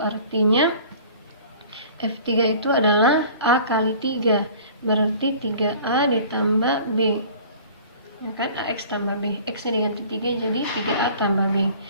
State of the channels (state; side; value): inverted; both; correlation -0.46